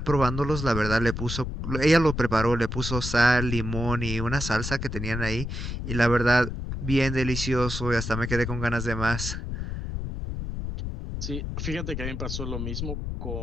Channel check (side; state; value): left; noise; rumble, 5 dB below the sound